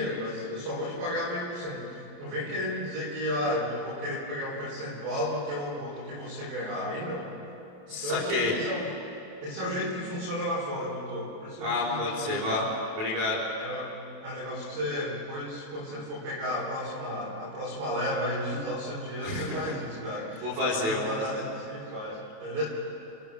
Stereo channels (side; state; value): left; late; 28 ms